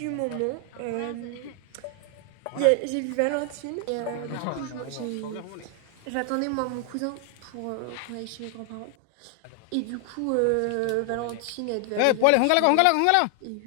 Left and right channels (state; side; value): different; both; correlation 0.00